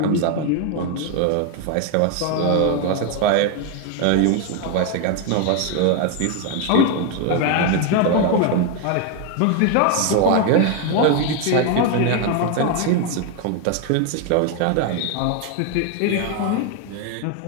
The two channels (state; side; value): different; both; correlation 0.01